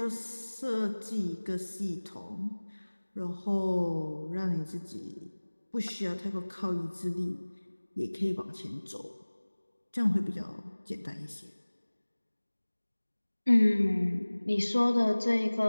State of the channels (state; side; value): inverted; both; correlation -1.00